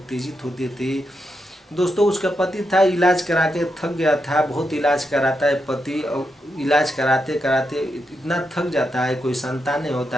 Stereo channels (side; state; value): both; normal; correlation 0.84